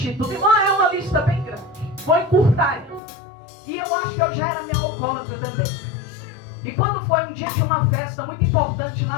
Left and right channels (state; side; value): drops out; right; at 3.0 s